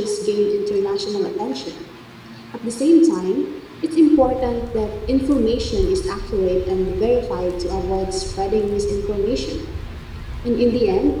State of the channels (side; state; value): both; identical; correlation 1.00